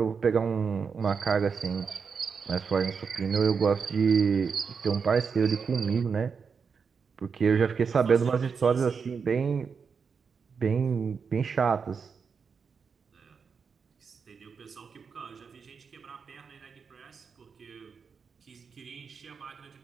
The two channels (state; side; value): quieter; left; 5.8 dB